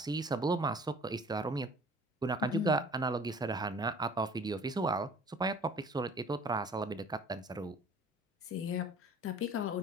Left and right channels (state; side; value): normal; both; correlation 0.49